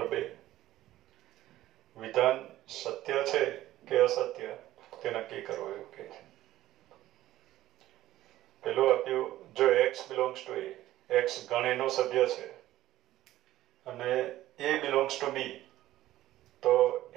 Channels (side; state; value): left; quieter; 14.7 dB